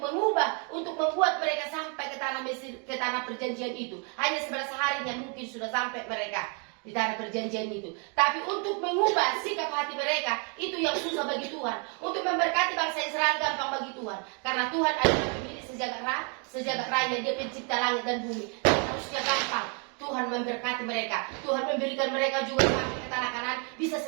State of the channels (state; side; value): quieter; left; 37.3 dB